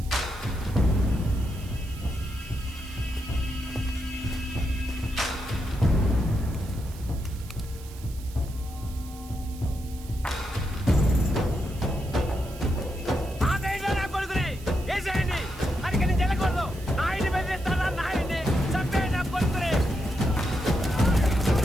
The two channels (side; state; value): right; noise; hiss, 19 dB below the sound